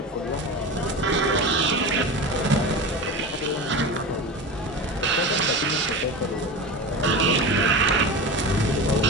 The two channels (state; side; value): normal; both; correlation 0.27